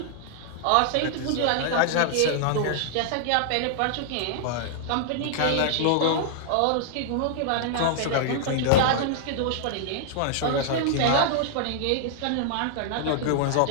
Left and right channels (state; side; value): different; both; correlation -0.01